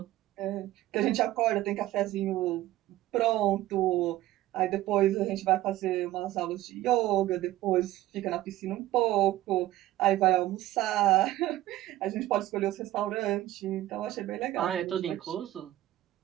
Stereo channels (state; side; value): quieter; left; 15.2 dB